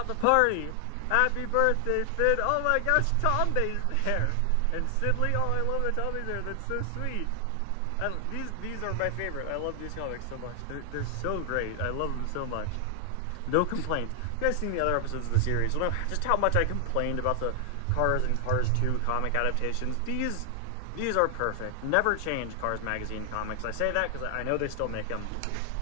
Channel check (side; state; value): both; different; correlation 0.00